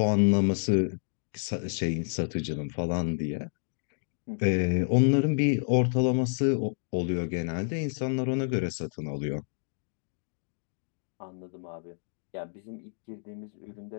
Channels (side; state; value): right; silent; digital silence